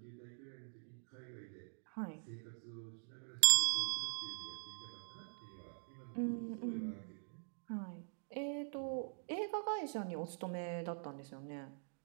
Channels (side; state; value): left; silent; digital silence